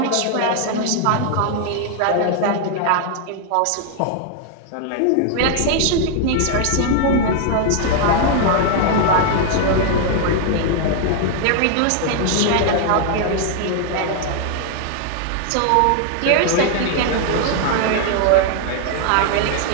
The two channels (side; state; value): both; different; correlation 0.00